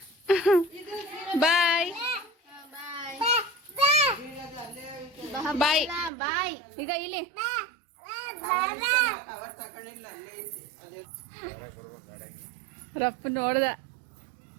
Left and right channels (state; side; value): drops out; left; at 6.1 s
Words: ಬಾಯ್ ಬಾಯ್ ಬಾಯ್. ಈಗ ಇಲ್ಲಿ ರಪ್ಪ ನೋಡ್ದ.